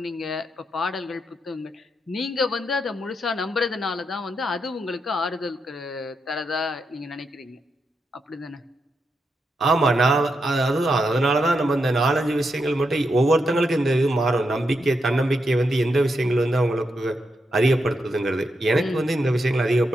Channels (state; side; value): normal; both; correlation 0.84